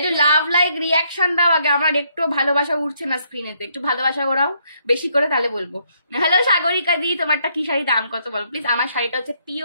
যে লাভ লাইক রিয়াকশন দাও আগে, আমার একটু ভালোবাসা উঠছে না স্ক্রিনেতে, একটু ভালোবাসা ওরাও বেশি করে, তাহলে বলবো। হ্যালো সাগরিকা দি, তোমারটা কি শাড়ি, দাম কত বলো প্লিজ? আমার শাড়িটা হচ্ছে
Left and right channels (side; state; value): both; inverted; correlation -0.72